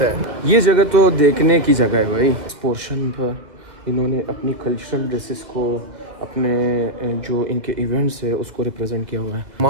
हैं। ये जगह तो देखने की जगह है भाई। इस पोर्शन पर इन्होंने अपनी कल्चरल ड्रेसेस को, अपने जो इनके इवेंट्स है उसको रिप्रेजेंट किया हुआ है।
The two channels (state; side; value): late; left; 2.3 ms